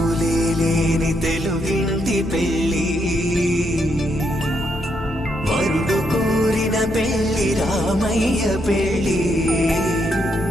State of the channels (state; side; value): noise; left; hum, 13 dB below the sound